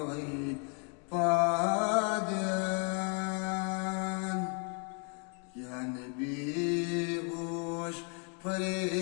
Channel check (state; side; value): quieter; right; 39.2 dB